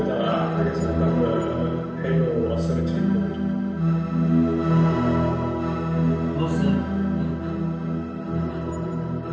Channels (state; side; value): identical; both; correlation 1.00